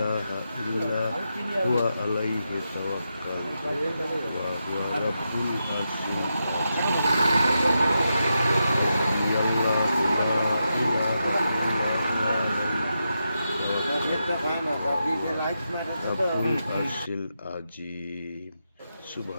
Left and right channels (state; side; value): inverted; both; correlation -0.87